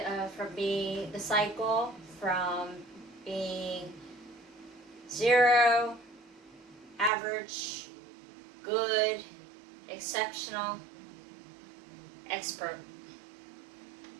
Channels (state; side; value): drops out; left; at 7.1 s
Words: cycle from being 0, average, good, exceptional, expert.